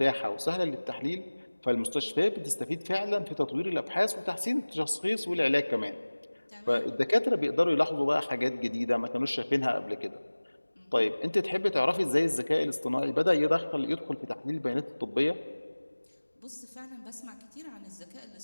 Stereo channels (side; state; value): both; inverted; correlation -1.00